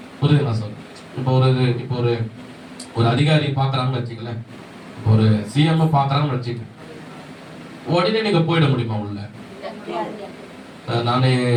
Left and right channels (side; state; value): both; identical; correlation 1.00